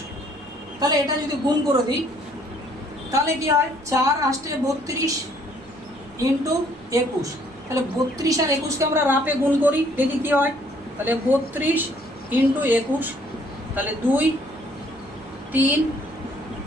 তাহলে এটা যদি গুণ করে দিই তাহলে কি হয়? 4 8 32 ইন্টু 21, তাহলে 32 আর 21-কে আমরা রাপে গুণ করি, দেখি কি হয়। তাহলে 32 ইন্টু 21, তাহলে 2 3,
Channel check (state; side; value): noise; right; rumble, 26 dB below the sound